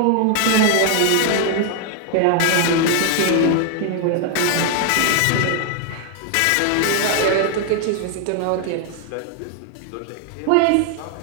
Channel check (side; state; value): both; different; correlation 0.00